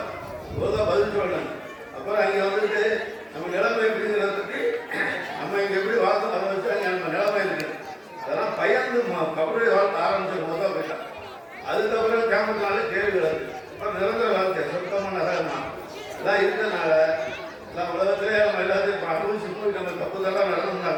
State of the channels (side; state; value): both; identical; correlation 1.00